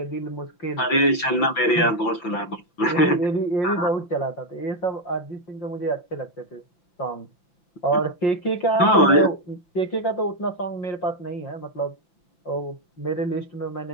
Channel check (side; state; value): right; late; 5.9 ms